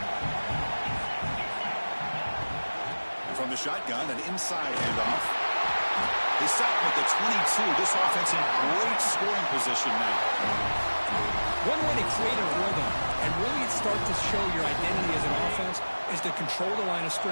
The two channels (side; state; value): both; inverted; correlation -1.00